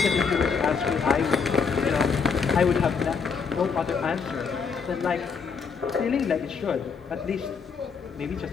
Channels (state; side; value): quieter; right; 5.7 dB